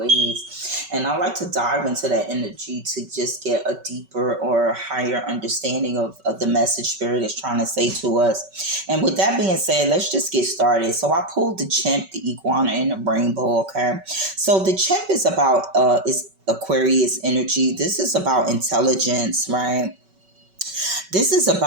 And I like to dive into that energy to just get a deeper or higher understanding of the message Spirit is trying to say to us. And with that being said, let's just get started. So I pulled the chimp, the iguana, and the rainbow, okay? So the chimp is about, is Aquarius energy. This is about intelligence, right? This is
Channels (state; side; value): late; left; 5.2 ms